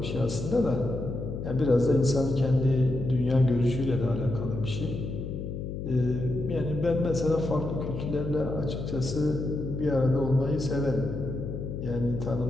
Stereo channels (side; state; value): left; noise; hum, 6 dB below the sound